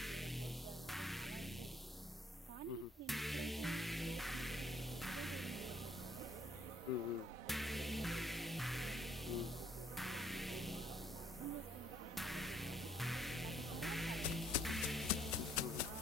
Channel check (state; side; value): normal; both; correlation 0.66